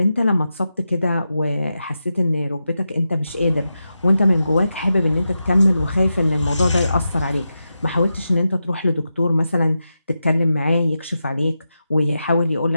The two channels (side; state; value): both; inverted; correlation -0.89